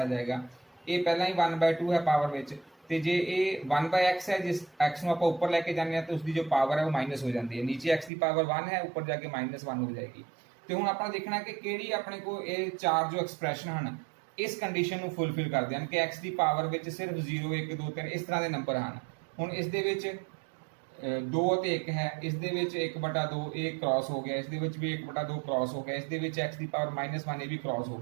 ਜਾਏਗਾ। ਇਹ ਪਹਿਲਾਂ ਹੀ 1/2 ਹੈ ਪਾਵਰ ਵਿੱਚ, ਤੇ ਜੇ ਇਹ 1/x ਹੈ, ਜਿਸ x ਨੂੰ ਆਪਾਂ ਉੱਪਰ ਲੈ ਕੇ ਜਾਂਦੇ ਹਾਂ ਤਾਂ ਉਸਦੀ ਜੋ ਪਾਵਰ ਹੈ ਉਹ ਮਾਈਨਸ ਹੋ ਜਾਂਦੀ ਹੈ। ਨੀਚੇ x ਦੀ ਪਾਵਰ 1 ਹੈ, ਉੱਪਰ ਜਾ ਕੇ -1 ਹੋ ਜਾਏਗੀ। ਤੇ ਹੁਣ ਆਪਾਂ ਦੇਖਣਾ ਕਿ ਕਿਹੜੀ ਆਪਣੇ ਕੋ ਇਹ ਚਾਰ ਜੋ ਐਕਸਪ੍ਰੈਸ਼ਨ ਹਨ ਇਸ ਕੰਡੀਸ਼ਨ ਨੂੰ ਫੁੱਲਫਿਲ ਕਰਦੇ ਹਨ ਕਿ x ਦੀ ਪਾਵਰ ਵਿੱਚ ਸਿਰਫ 0 1 2 3 ਇਸ ਤਰ੍ਹਾਂ ਦੇ ਨੰਬਰ ਹਨ। ਹੁਣ ਇਸ ਦੇ ਵਿੱਚ 2 ਅਤੇ 1 ਹੈ, ਇਸ ਦੇ ਵਿੱਚ 1/2 ਇਹ ਕ੍ਰਾਸ ਹੋ ਗਿਆ, ਇਸ ਦੇ ਵਿੱਚ ਵੀ 1/2 ਕ੍ਰਾਸ ਹੋ ਗਿਆ, ਇਸ ਦੇ ਵਿੱਚ x ਦੀ ਪਾਵਰ -1 ਇਹ ਵੀ ਕ੍ਰਾਸ ਹੋ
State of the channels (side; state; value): left; drops out; at 8.1 s